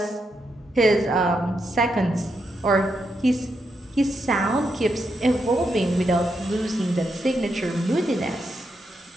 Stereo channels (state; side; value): normal; both; correlation 0.82